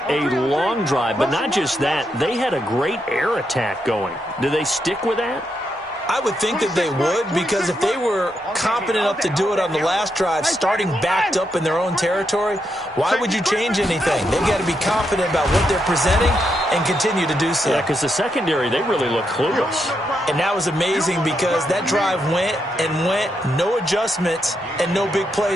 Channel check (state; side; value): normal; both; correlation 0.81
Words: a long drive, but not just that. They had a great air attack going. Do they stick with that? I would think that they would, because if they were competent enough to do it on the last drive, starting backed up in their own territory, why would you change anything? They've got to be confident about what they're presenting and continue to do so. Yeah, because the secondary, they really look clueless. And that was amazing because that drive went and went, no adjustments and no big